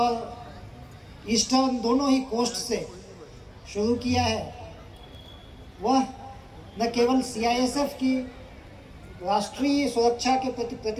eastern दोनों ही coast से शुरू किया है, वह न केवल CISF की राष्ट्रीय सुरक्षा के प्रति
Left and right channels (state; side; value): identical; both; correlation 1.00